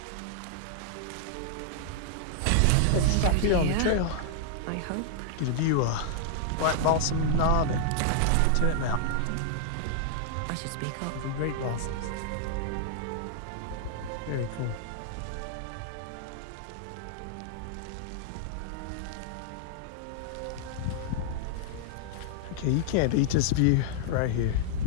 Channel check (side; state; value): both; different; correlation -0.01